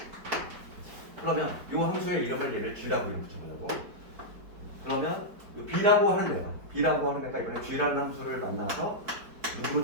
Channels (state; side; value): late; left; 4.6 ms